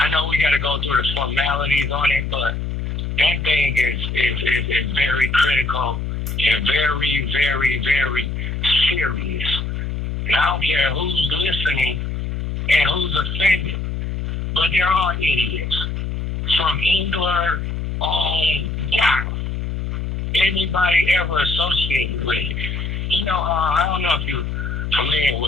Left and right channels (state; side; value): noise; left; hum, 3 dB below the sound